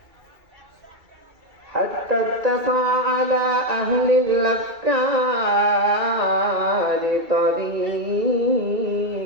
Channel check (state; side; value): late; left; 2.3 ms